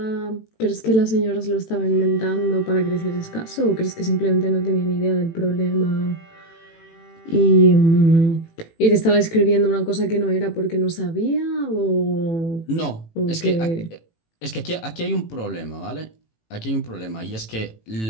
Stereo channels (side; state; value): right; late; 18 ms